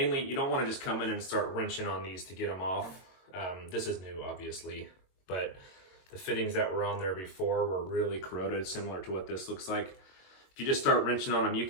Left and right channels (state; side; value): late; right; 22 ms